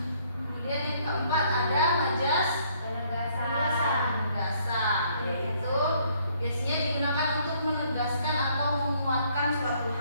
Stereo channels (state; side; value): inverted; both; correlation -0.66